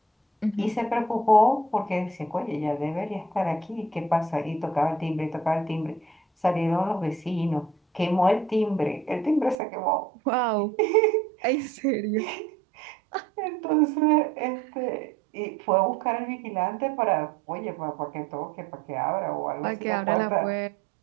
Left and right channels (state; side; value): drops out; left; at 9.6 s